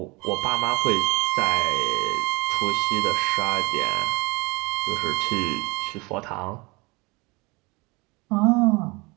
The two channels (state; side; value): quieter; left; 26.0 dB